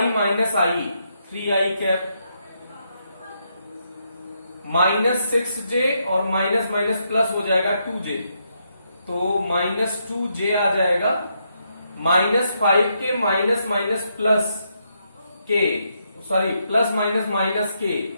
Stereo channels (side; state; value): both; inverted; correlation -0.79